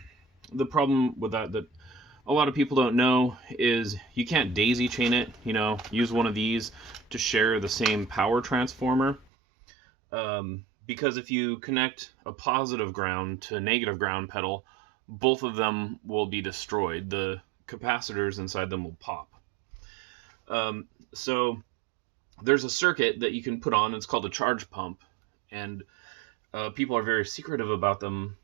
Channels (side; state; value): left; drops out; at 9.2 s